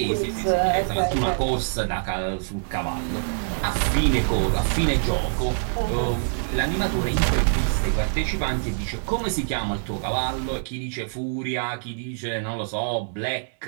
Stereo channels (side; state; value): left; silent; digital silence